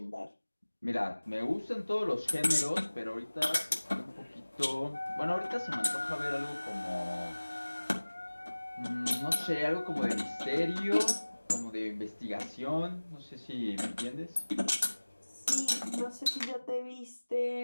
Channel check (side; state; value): both; inverted; correlation -1.00